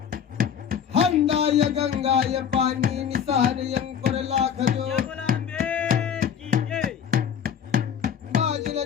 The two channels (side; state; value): right; quieter; 8.1 dB